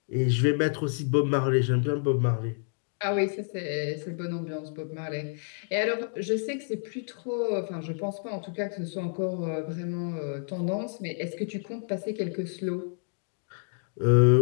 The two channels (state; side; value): silent; right; 59 dB below the other